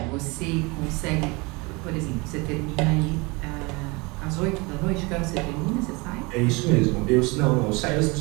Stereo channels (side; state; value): left; quieter; 26.4 dB